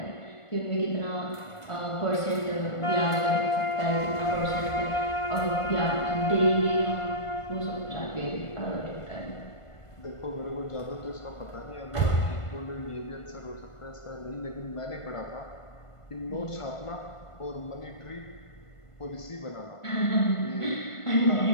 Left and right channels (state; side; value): late; right; 1.5 ms